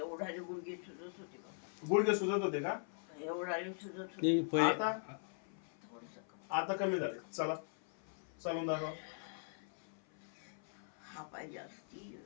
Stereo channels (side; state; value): right; silent; 51 dB below the other